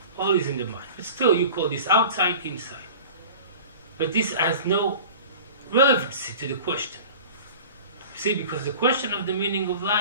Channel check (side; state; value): both; inverted; correlation -0.39